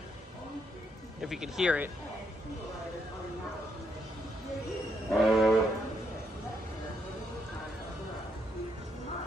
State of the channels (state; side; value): normal; both; correlation 0.76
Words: if you can hear it.